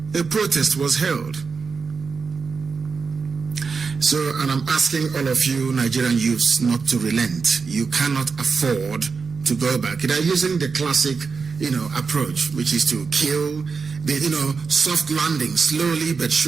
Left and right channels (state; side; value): quieter; left; 5.1 dB